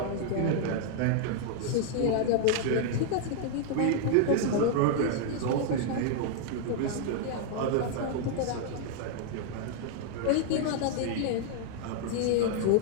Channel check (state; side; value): different; both; correlation 0.00